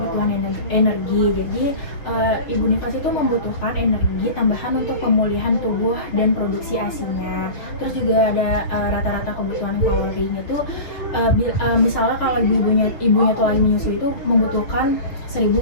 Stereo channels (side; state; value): right; late; 6.8 ms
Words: energi. Jadi ibu nifas itu membutuhkan energi tambahan untuk pemulihan tubuh dan produksi ASI-nya. Terus juga ada rata-rata kebutuhan kalorinya tuh misalnya kalau ibunya tuh lagi menyusui itu membutuhkan